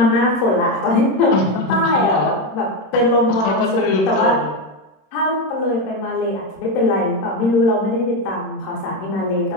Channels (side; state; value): right; late; 26 ms